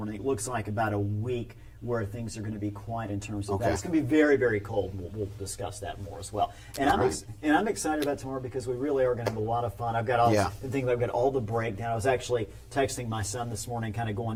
It looks like about a week where things are going to be quiet in terms of Okay. that. It's going to be very, very cold. We'll discuss that more as well. And I'm excited about tomorrow because we really are going to have a lot of fun. I've got all I've got all the breakdown. I was actually texting my son this morning, kind of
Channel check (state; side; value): identical; both; correlation 1.00